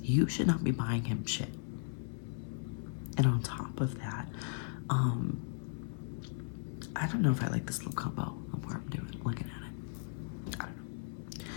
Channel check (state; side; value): silent; right; 53 dB below the other